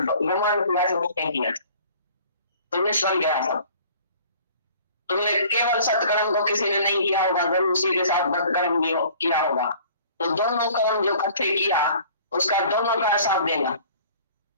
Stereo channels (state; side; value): inverted; both; correlation -0.51